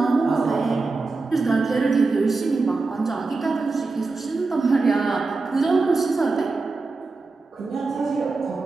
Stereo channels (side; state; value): left; quieter; 3.8 dB